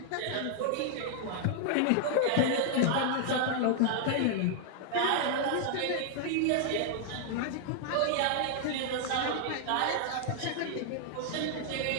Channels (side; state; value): both; different; correlation 0.00